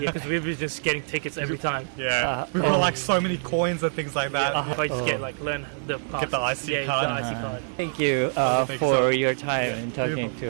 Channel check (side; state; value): left; silent; digital silence